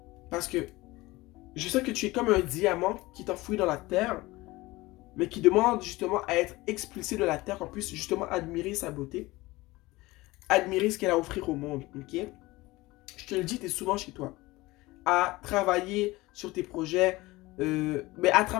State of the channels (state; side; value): quieter; right; 20.4 dB